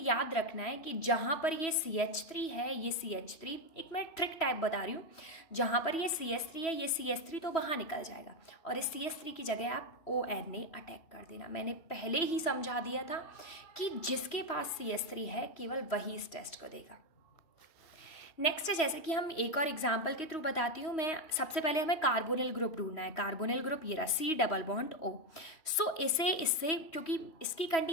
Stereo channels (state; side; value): late; right; 3.1 ms